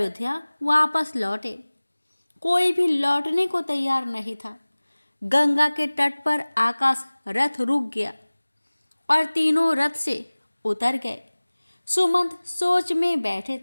वापस लौटे। कोई भी लौटने को तैयार नहीं था। गंगा के तट पर आकाश रथ रुक गया और तीनों रथ से उतर गए। सुमंत सोच में बैठे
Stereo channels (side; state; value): both; inverted; correlation -1.00